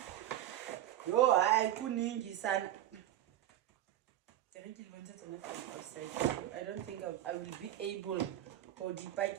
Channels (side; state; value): left; quieter; 13.0 dB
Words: I couldn't son. I don't think I will be able